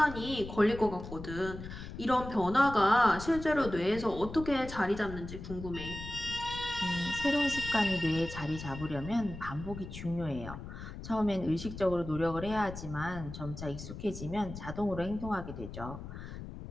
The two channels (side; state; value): left; noise; rumble, 10 dB below the sound